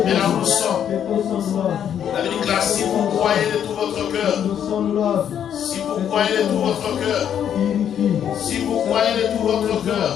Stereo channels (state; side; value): quieter; right; 9.2 dB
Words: et là où nous sommes, la Bible déclare, si vous croyez de tout votre cœur, si vous croyez de tout votre cœur, si vous croyez de tout votre cœur,